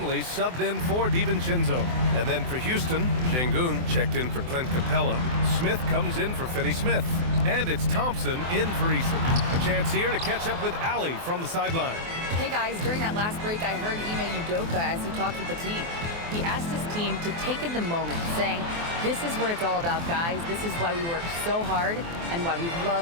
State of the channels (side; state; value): left; late; 24 ms